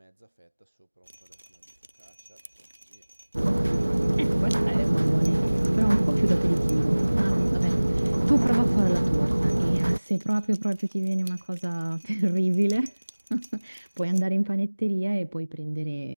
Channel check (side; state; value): both; inverted; correlation -1.00